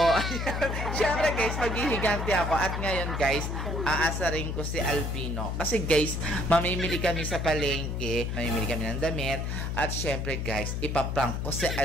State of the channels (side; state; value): left; noise; hum, 2 dB below the sound